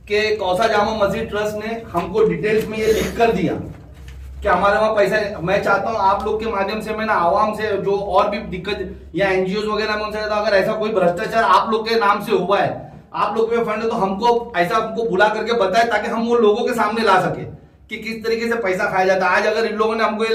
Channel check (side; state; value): both; identical; correlation 1.00